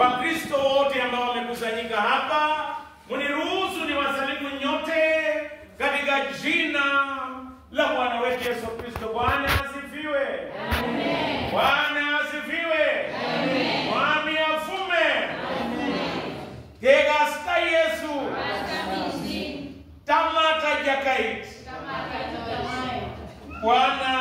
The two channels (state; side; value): identical; both; correlation 1.00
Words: wote ambao wamekusanyika hapa, mniruhusu niwasalimu nyote katika jina la Bwana wetu Yesu Kristo. Bwana asifiwe. Amen. Bwana asifiwe. Amen. Mwami afume. Amen. Gegasta Yesu. Tamata jakait.